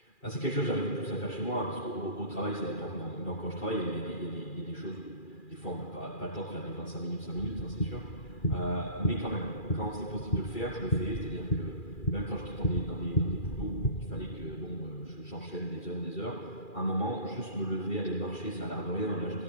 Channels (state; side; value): late; right; 2.4 ms